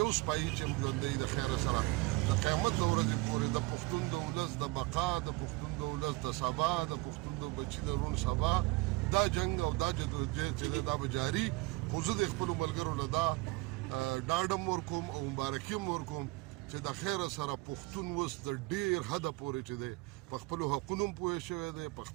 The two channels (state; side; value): quieter; left; 22.6 dB